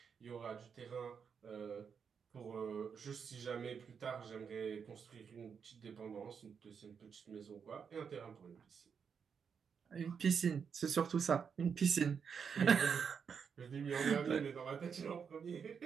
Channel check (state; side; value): quieter; left; 6.6 dB